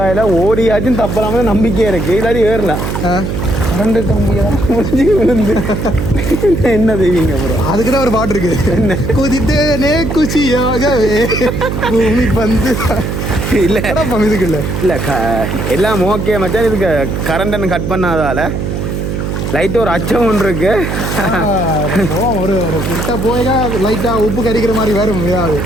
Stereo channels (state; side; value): noise; right; hum, 3 dB below the sound